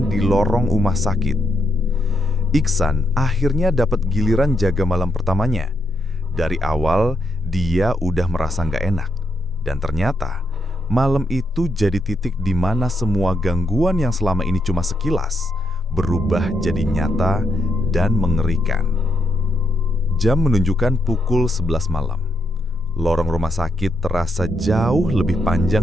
di lorong rumah sakit. Iksan akhirnya dapat giliran jaga malam pertamanya. Dari awal, dia udah merasa nggak enak. Dan ternyata, malam itu jadi titik di mana semua gangguan yang selama ini cuma sekilas berubah jadi nyata dan mengerikan. Jam menunjukkan pukul 11 malam. Lorong rumah sakit terasa jauh lebih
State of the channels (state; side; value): normal; both; correlation 0.80